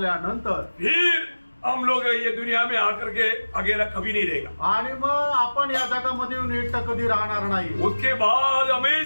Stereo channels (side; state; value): both; inverted; correlation -1.00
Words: फिर हम लोग ये दुनिया में आकर के अकेला कभी नहीं रहेगा. आणि मग आपण या जगामध्ये येऊन एकटं कधी राहणार नाही. उसके बाद